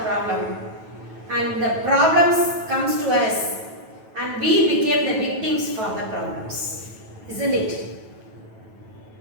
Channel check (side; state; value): left; late; 9.1 ms